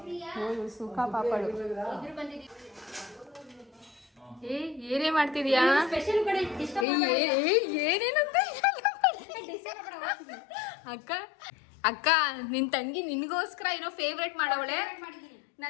ಸುಖ ಪಾಪಳು. ಏನೇ ಮಾಡ್ತಿದ್ಯಾ? ಏನೇನಂತ ಅಕ್ಕ ಅಕ್ಕ, ನಿನ್ ತಂಗಿ ನಿನ್ಗೋಸ್ಕರ ಏನೋ ಫೇವ್ರೇಟ್ ಮಾಡವಳೆ.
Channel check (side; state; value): right; drops out; at 6.9 s